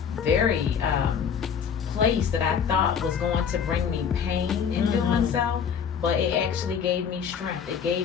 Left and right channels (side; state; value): right; quieter; 7.1 dB